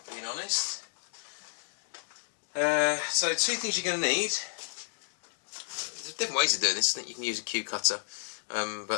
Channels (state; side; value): silent; right; digital silence